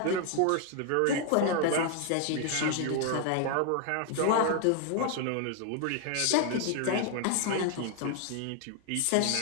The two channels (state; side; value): different; both; correlation 0.00